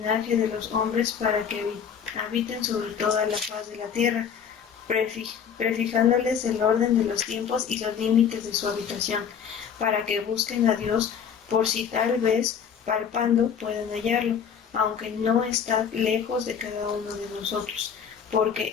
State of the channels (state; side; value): quieter; right; 7.4 dB